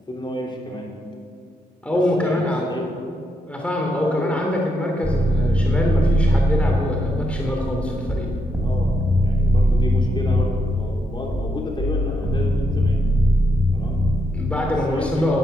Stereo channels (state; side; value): normal; both; correlation 0.80